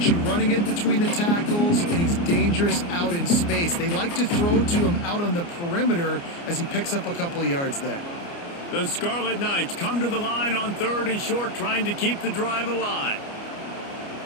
you running it between the tackles, and he's dangerous out in space. They like to throw it to him out on the perimeter as he picks up a couple of yards there. The Scarlet Knights come to the line on 3rd and short, trying to keep the drive alive.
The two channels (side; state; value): right; late; 29 ms